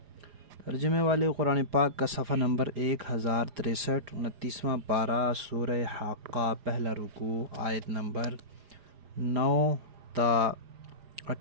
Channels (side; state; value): left; late; 4.9 ms